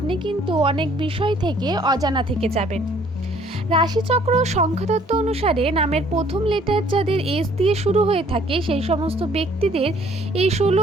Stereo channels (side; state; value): both; normal; correlation 0.59